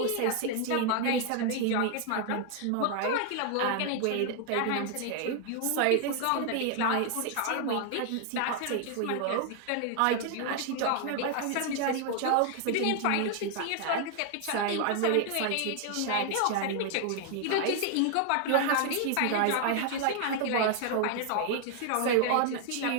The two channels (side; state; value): both; different; correlation 0.00